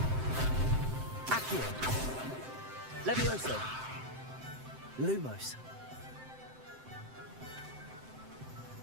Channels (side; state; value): left; late; 7.8 ms